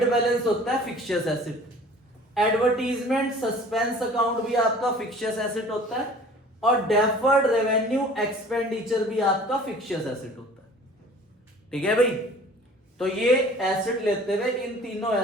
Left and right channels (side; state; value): both; normal; correlation 0.47